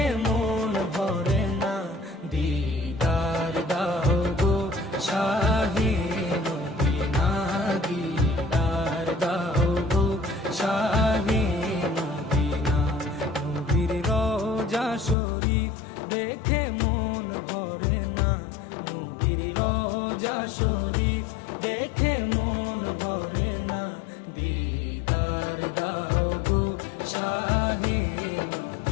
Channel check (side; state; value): right; drops out; at 15.2 s